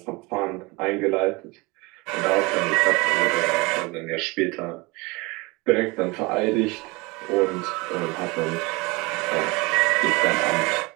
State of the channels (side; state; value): left; quieter; 24.9 dB